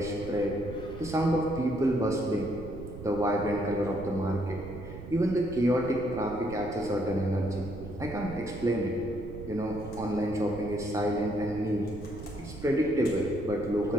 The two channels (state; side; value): noise; right; rumble, 12 dB below the sound